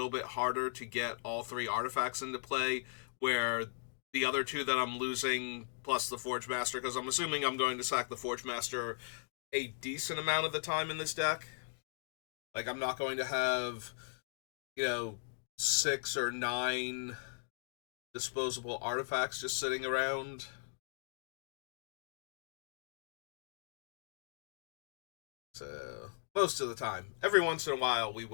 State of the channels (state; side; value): silent; right; digital silence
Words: bit harder to get all three artifacts into play, where the other two that I'm losing, plus the Forge Master, because I'm assuming I'm going to sack the Forge Master a decent amount of the time in this deck. Like, I'm not going to have, you know, 6 or 9 disposable artifacts just sitting around. So, most of the time. Every once in a while, we